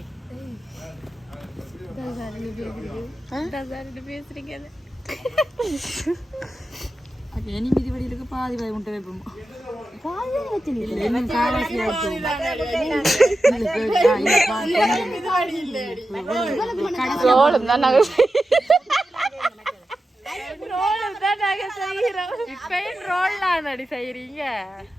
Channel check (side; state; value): both; normal; correlation 0.91